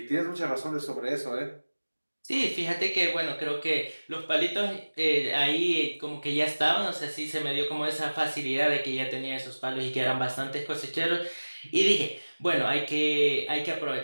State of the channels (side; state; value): both; inverted; correlation -1.00